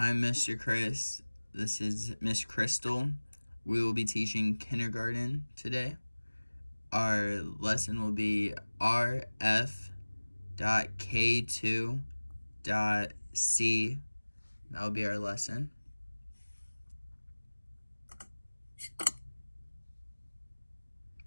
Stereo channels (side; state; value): both; inverted; correlation -1.00